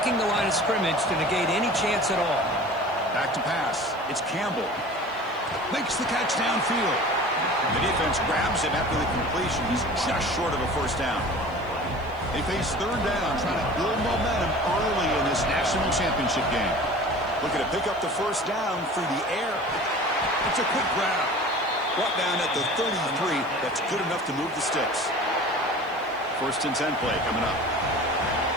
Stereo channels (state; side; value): noise; left; hiss, 29 dB below the sound